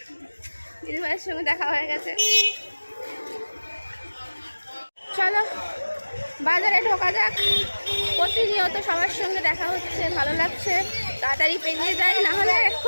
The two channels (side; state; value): both; inverted; correlation -1.00